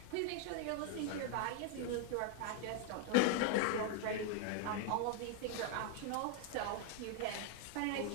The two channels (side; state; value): both; different; correlation 0.00